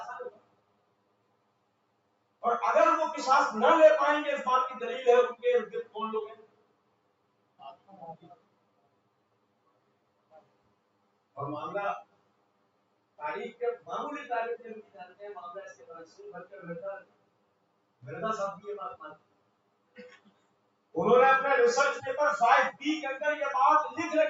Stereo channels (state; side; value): identical; both; correlation 1.00